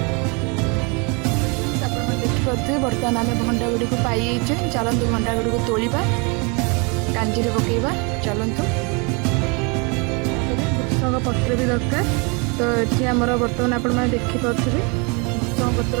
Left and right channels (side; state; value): left; quieter; 31.7 dB